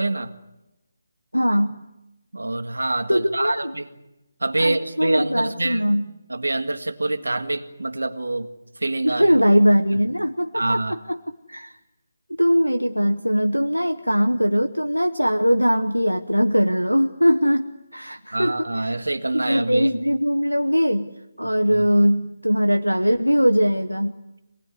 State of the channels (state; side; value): inverted; both; correlation -0.99